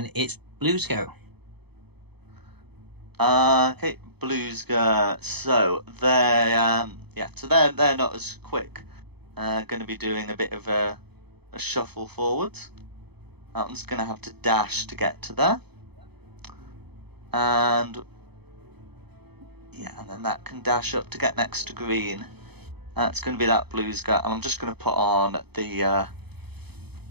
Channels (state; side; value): late; left; 0.98 ms